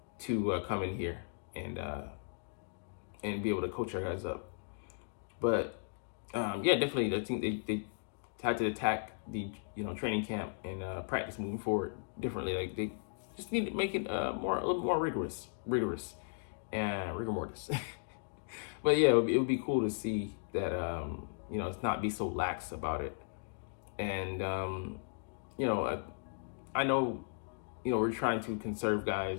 to come in here and be able to coach our guys up. But yeah, definitely, I think they had to attack the training camp and practice moving forward differently. Like they just need to make it a little more rigorous and rigor mortis. But yeah, it would be cool to see that it's not be so lax about it. And I know we're trying to conserve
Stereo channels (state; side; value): silent; right; digital silence